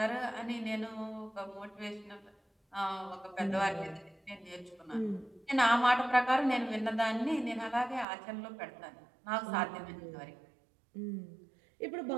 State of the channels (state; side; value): drops out; left; at 8.1 s